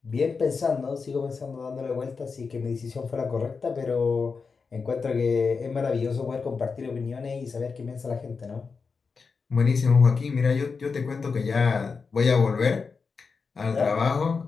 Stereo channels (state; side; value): quieter; right; 5.0 dB